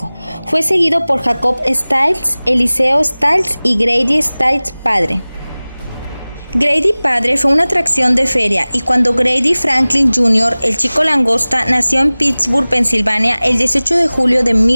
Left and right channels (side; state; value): both; inverted; correlation -0.99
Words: Fue seguido por Jacob Stiles, Eliseo Stiles y Grady Stiles padre. Grady padre fue una atracción de feria y cuando Grady Franklin Jr., el chico langosta, nació en Pittsburgh, Pensilvania, el 18 de julio de